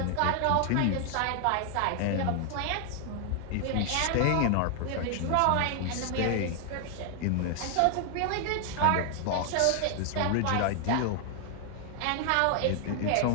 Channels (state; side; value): different; both; correlation 0.00